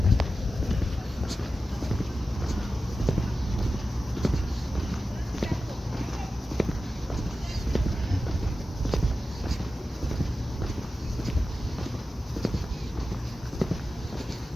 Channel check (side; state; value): both; normal; correlation 0.93